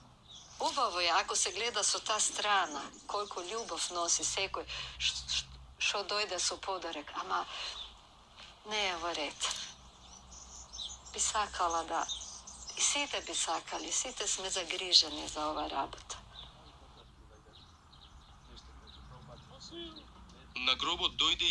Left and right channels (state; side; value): identical; both; correlation 1.00